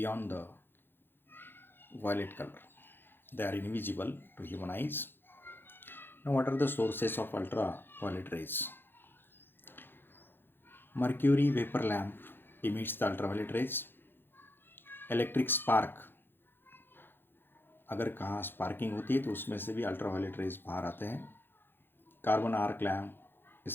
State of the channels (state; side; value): late; right; 0.10 ms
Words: the violet color. They are invisible to human eyes. Now, what are the sources of ultraviolet rays? Mercury vapor lamp emits the ultraviolet rays. Electric spark, अगर कहाँ sparking होती है तो उसमें से भी ultraviolet rays बाहर आते हैं. कार्बन आर्क लैम्प,